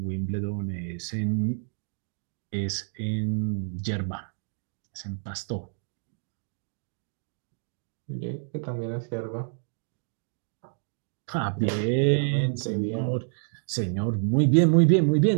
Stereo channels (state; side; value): silent; left; digital silence